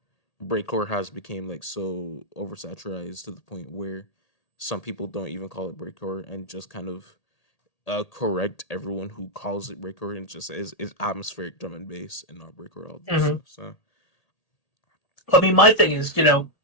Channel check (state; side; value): late; right; 1.8 ms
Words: breakcore has become like so oversaturated to the point where some people don't even call it breakcore and just kind of correct everyone who calls it breakcore and just is atmospheric drum and bass and not breakcore all this mhm. stuff. So I mean, my thing is,